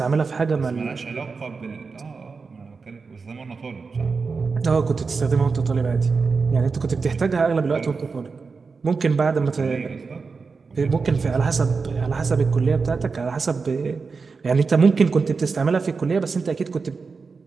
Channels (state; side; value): quieter; left; 4.7 dB